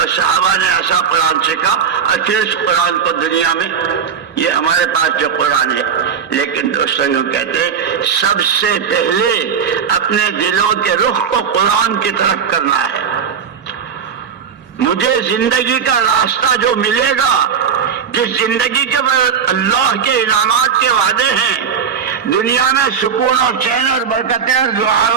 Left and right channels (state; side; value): quieter; left; 7.2 dB